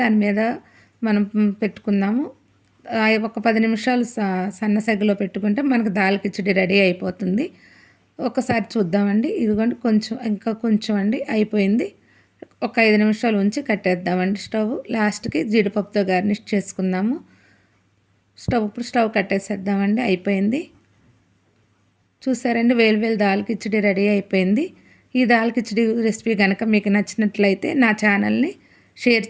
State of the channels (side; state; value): both; identical; correlation 1.00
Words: మీద మనం పెట్టుకుందాము. ఒక 10 నిమిషాలు సన్న సెగలో పెట్టుకుంటే మనకు దాల్ కిచిడి రెడీ అయిపోతుంది. ఒకసారి చూద్దామండి. ఇదిగోండి కొంచెం ఇంకా కొంచెం అండి అయిపోయింది. ఒక 5 నిమిషాలు ఉంచి కట్టేద్దామండి స్టవ్. లాస్ట్కి జీడిపప్పుతో గార్నిష్ చేసుకుందాము. ఇప్పుడు స్టవ్ కట్టేసేద్దామండి. అయిపోయింది. చూసారండి, వేలు దాల్ కిచిడి రెడీ అయిపోయింది. ఈ దాల్ కిచిడి రెసిపీ కనుక మీకు నచ్చినట్లయితే నా ఛానల్ని షేర్